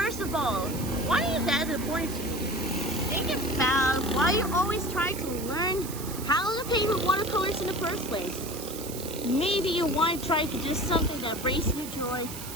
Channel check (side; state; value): right; noise; hiss, 11 dB below the sound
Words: of all, why are you that important to you? Think about why you always try to learn how to paint with watercolors in the first place. Maybe you want to try to do something that brings you joy,